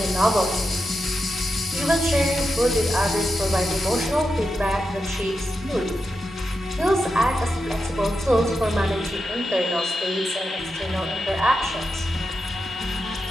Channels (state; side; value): normal; both; correlation 0.88